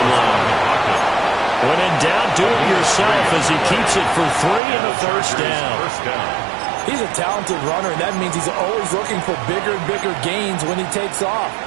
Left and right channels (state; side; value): drops out; left; at 4.6 s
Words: line. When in doubt, do it yourself as he keeps it for 3 and a first down. He's a talented runner, and that means he's always looking for bigger and bigger gains when he takes off.